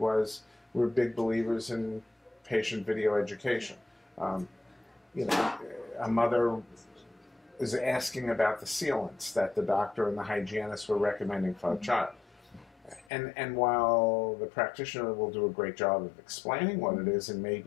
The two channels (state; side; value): drops out; right; at 13.1 s